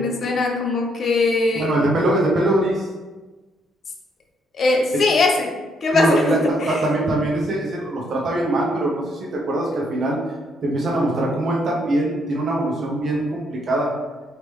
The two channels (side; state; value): both; normal; correlation 0.72